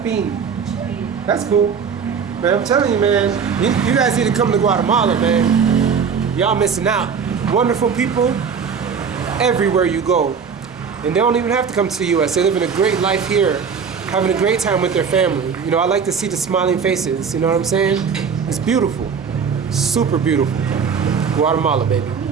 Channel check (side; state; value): left; quieter; 6.3 dB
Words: That's cool. Man, I'm telling you, man. You guys need to come to Guatemala, man. Y'all missing out. Wonderful people everywhere you go. And they don't even have to come to the U.S. They're living a great life here, having a great time with their family. You know, I like to see the smiling faces. You know what I'm saying? It's beautiful. Super beautiful. Guatemala, baby.